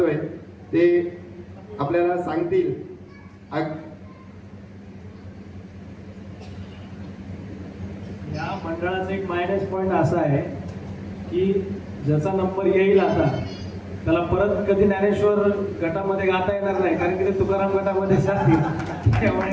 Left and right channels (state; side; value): identical; both; correlation 1.00